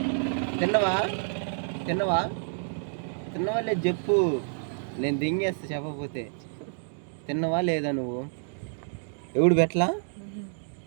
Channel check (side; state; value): left; silent; digital silence